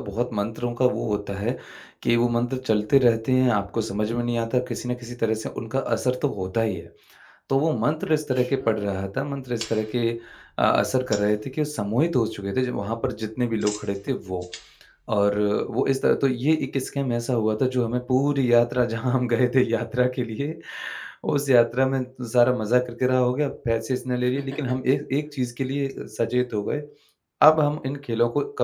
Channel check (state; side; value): identical; both; correlation 1.00